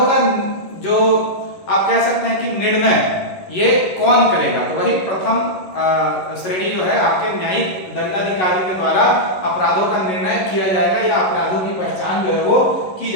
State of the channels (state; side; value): late; right; 11 ms